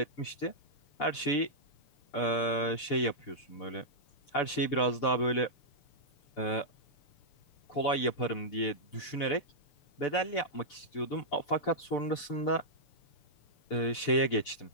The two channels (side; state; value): right; late; 6.8 ms